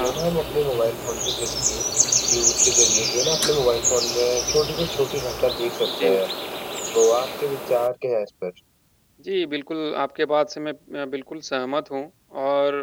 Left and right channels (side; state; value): both; identical; correlation 1.00